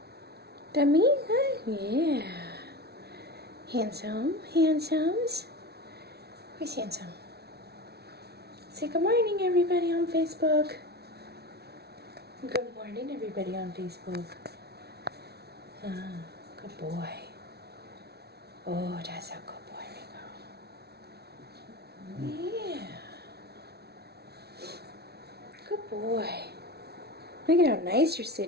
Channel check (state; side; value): late; left; 0.47 ms